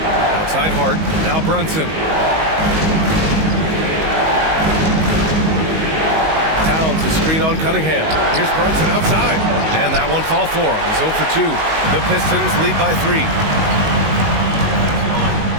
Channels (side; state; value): left; late; 19 ms